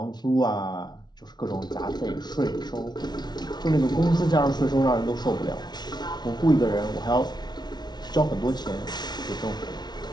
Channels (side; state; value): right; late; 0.20 ms